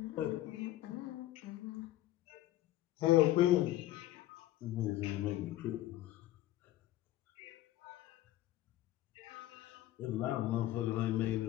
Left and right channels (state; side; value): quieter; right; 15.1 dB